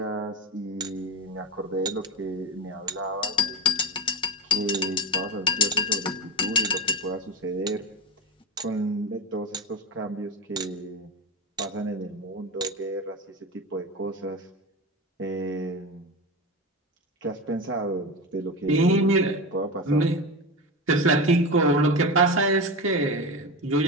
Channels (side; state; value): both; normal; correlation 0.22